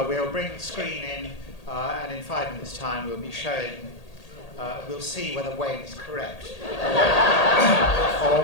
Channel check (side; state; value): right; late; 1.8 ms